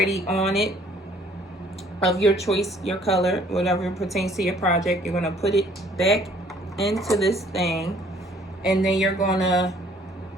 on it of your choice, your color, whatever pertains to your project. You're gonna put it back into this thing, and then you're gonna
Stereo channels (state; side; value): normal; both; correlation 0.59